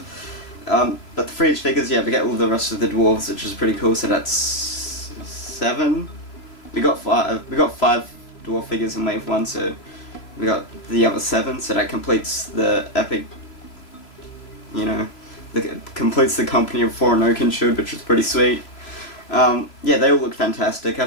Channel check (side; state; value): right; late; 3.0 ms